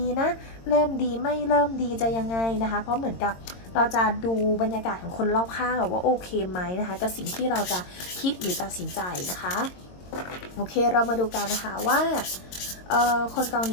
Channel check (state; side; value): late; right; 22 ms